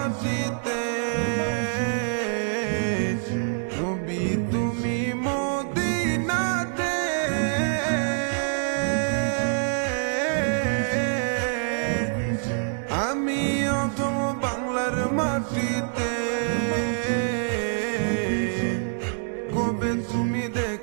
নবী তুমি মদিনাতে, আমি অধম বাংলার মাটিতে। কবে তুমি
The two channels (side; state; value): left; silent; digital silence